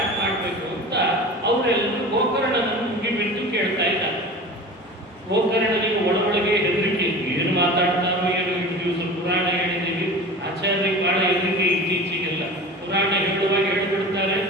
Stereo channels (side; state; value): both; normal; correlation 0.35